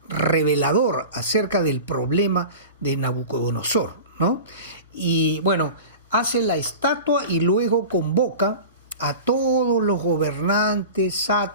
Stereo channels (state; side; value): inverted; both; correlation -0.34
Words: revelador acerca del problema de Nabucodonosor, ¿no? Y bueno, hace la estatua y luego convoca a todos los gobernantes,